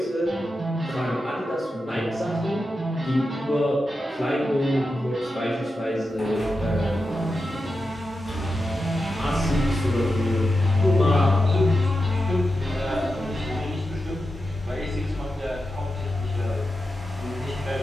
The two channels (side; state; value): both; normal; correlation 0.89